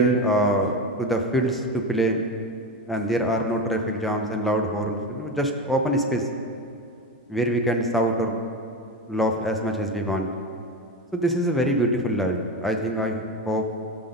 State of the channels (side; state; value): both; normal; correlation 0.20